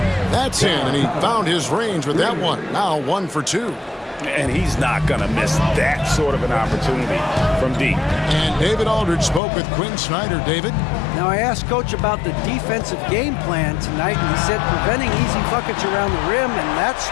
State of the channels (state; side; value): drops out; right; at 9.4 s